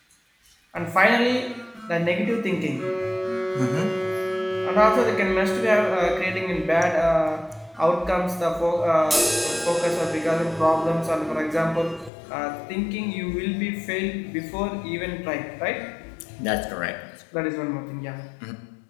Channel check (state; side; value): drops out; right; at 12.1 s